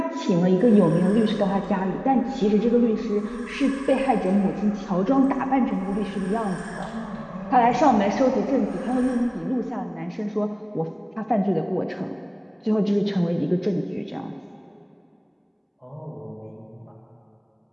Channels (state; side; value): identical; both; correlation 1.00